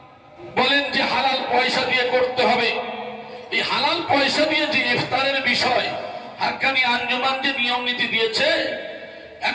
বলেন যে হালাল পয়সা দিয়ে করতে হবে, এই হালাল পয়সা দিয়ে যে ইফতারের বিষয় হাক্কানি আঞ্জুমান যে নিয়ম নীতি দিয়েছে,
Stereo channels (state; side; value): identical; both; correlation 1.00